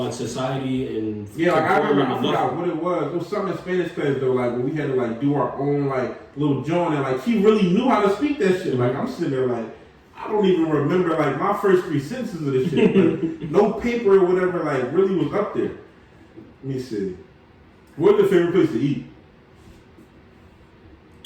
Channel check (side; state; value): both; identical; correlation 1.00